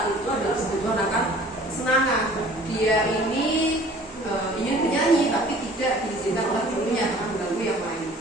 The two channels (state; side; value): normal; both; correlation 0.50